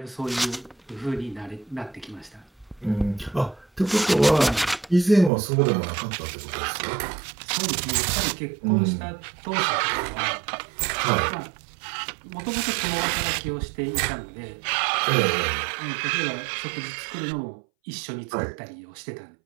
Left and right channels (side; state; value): left; drops out; at 5.3 s